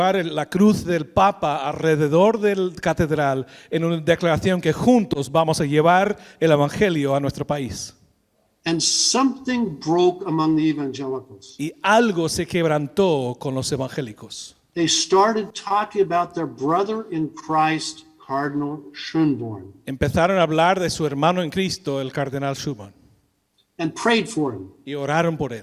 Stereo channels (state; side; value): identical; both; correlation 1.00